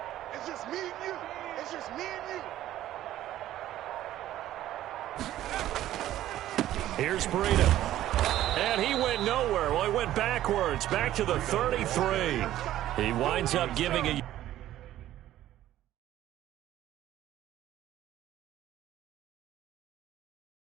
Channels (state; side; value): quieter; left; 13.3 dB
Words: It's just me and you. Here's Breida. And he went nowhere. Well, he went backwards, back to the 33. He winds up giving a...